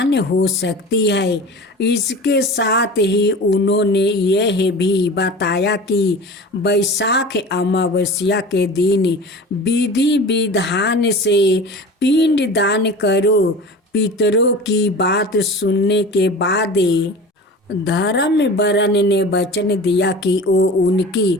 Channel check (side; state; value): both; normal; correlation 0.36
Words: हो सकती है। इसके साथ ही उन्होंने यह भी बताया कि वैशाख अमावस्या के दिन विधि विधान से पिंड दान करो। पितरों की बात सुनने के बाद धर्म वर्ण ने वचन दिया कि वो उनकी